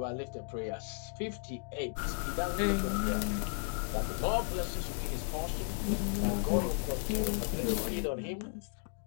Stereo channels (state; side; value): silent; right; 55 dB below the other